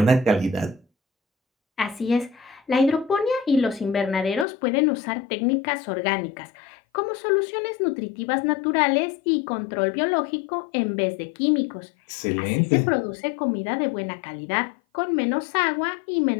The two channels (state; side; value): drops out; right; at 4.5 s